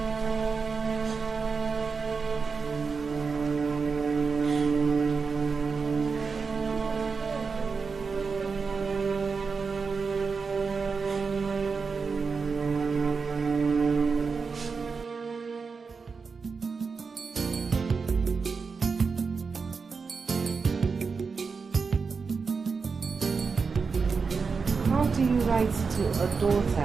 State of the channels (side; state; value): left; quieter; 5.0 dB